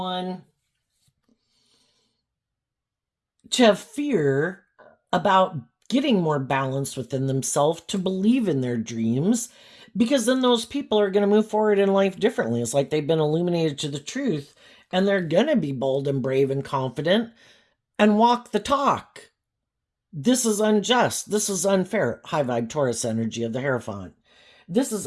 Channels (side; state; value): both; identical; correlation 1.00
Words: to have fear about getting more balance within themselves, to believe in their dreams, because then those people are going to move forward in life differently. It's like they've been illuminated to the truth, and they're going to be bold and brave and confident and walk the talk. This is unjust. This is unfair. High vibe Taurus energy of the Hierophant. This is